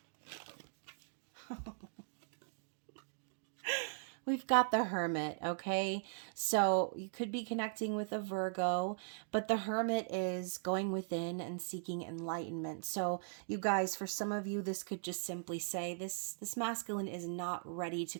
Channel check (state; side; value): silent; left; digital silence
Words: We've got the Hermit, okay? So you could be connecting with a Virgo, but the Hermit is going within and seeking enlightenment. So you guys, for some of you, this could just simply say this masculine is not ready to